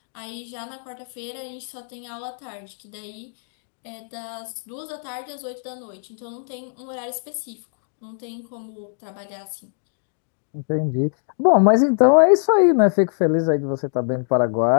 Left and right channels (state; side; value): silent; right; digital silence